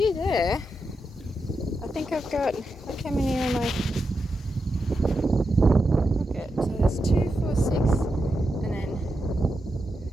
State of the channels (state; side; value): normal; both; correlation 0.87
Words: there. I think I've got, look how many are my. So there's 2, 4, 6, and then